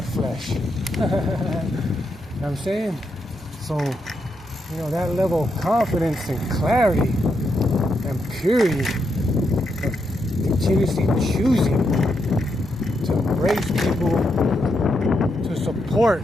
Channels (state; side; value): normal; both; correlation 0.82